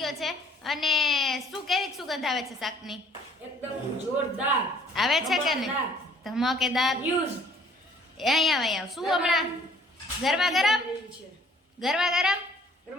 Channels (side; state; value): both; normal; correlation 0.58